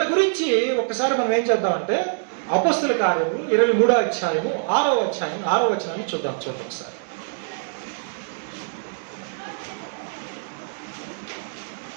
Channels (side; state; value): left; silent; digital silence